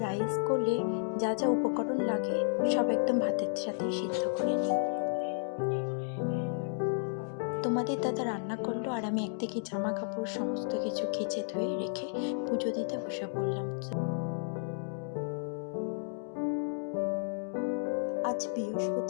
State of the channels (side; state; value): right; silent; digital silence